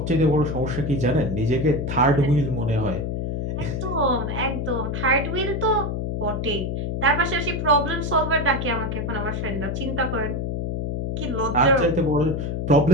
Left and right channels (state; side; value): noise; left; hum, 3 dB below the sound